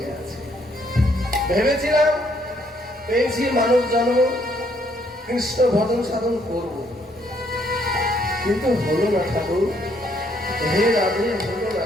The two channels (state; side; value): normal; both; correlation 0.69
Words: গেছে। ভেবেছিলাম পেয়েছি মানব জন্ম, কৃষ্ণ ভজন সাধন করব, কিন্তু হলো না ঠাকুর। হে রাধে, হলো না